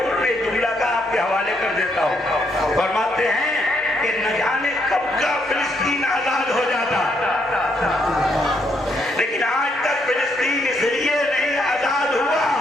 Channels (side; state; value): both; normal; correlation 0.75